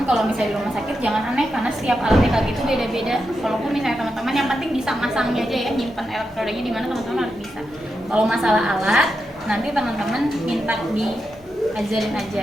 kalau misalnya di rumah sakit jangan aneh karena setiap alat EKG itu beda-beda. Walaupun misalnya teman-teman yang penting bisa masangnya aja ya, nyimpan elektrodanya di mana teman-teman harus bisa. Kalau masalah alat, nanti teman-teman minta diajarin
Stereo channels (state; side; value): normal; both; correlation 0.87